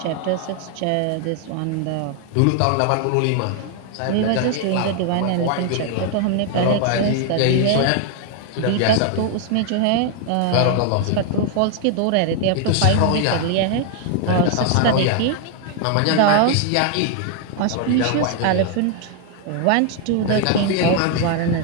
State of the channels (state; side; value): different; both; correlation 0.00